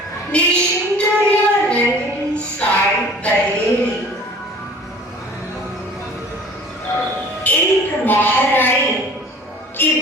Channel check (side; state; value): both; normal; correlation 0.47